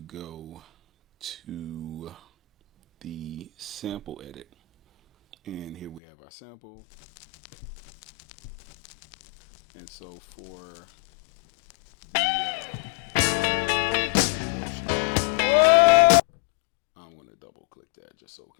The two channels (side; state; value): right; drops out; at 6.0 s